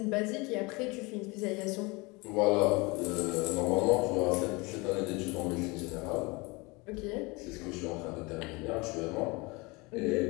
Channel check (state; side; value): quieter; right; 25.9 dB